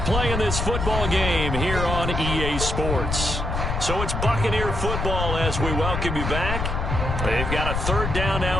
in this football game here on EA Sports. So it's Buccaneer football as we welcome you back. They've got a 3rd down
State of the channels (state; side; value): noise; left; rumble, 2 dB below the sound